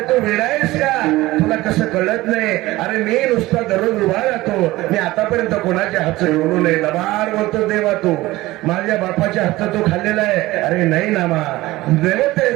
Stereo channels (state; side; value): quieter; left; 18.4 dB